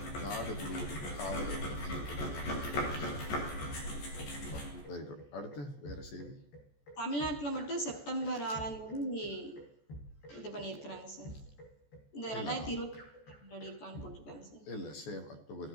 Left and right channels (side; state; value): right; late; 14 ms